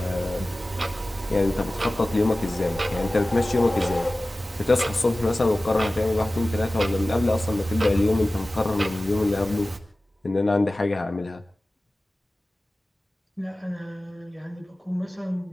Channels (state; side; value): normal; both; correlation 0.97